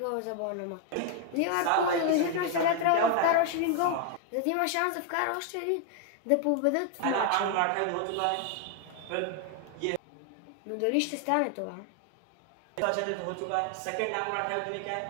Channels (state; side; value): different; both; correlation 0.00